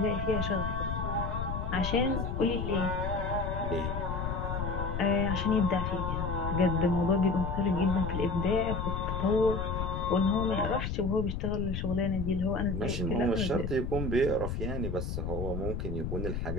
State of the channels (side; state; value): left; noise; rumble, 3 dB below the sound